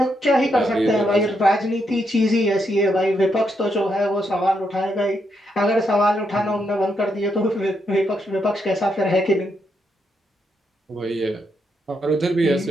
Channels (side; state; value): both; normal; correlation 0.80